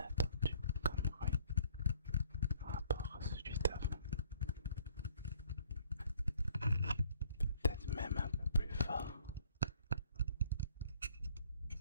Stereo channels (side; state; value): both; inverted; correlation -0.61